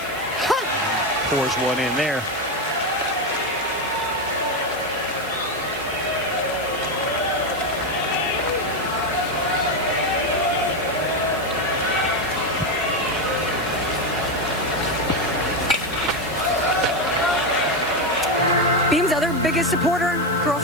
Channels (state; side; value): noise; left; hiss, 18 dB below the sound